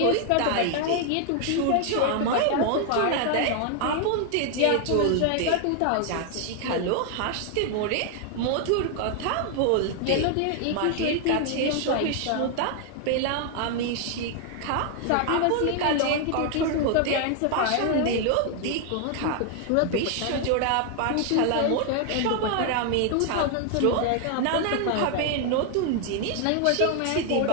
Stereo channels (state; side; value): different; both; correlation 0.00